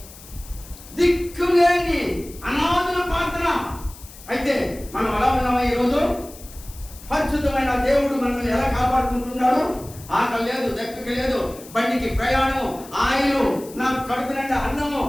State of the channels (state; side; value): noise; left; hiss, 19 dB below the sound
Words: దిక్కులేని అనాథుల ప్రార్థన. అయితే మనం ఎలా ఉన్నామా ఈరోజు? పరిశుద్ధమైన దేవుడు మనల్ని ఎలా కాపాడుకుంటున్నాడు? ఆకలి లేదు, దక్కకి లేదు, బండికి ప్రయాణం, ఆయిలు, నాకు కడుపు నిండా అన్నము,